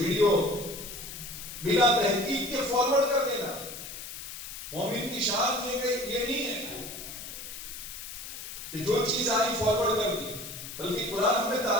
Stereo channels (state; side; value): noise; left; hiss, 10 dB below the sound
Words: بلا تحقیق کے فارورڈ کر دینا. مومن کی شان یہ نہیں ہے کہ جو چیز آئی فارورڈ کر دی، بلکہ قرآن ہمیں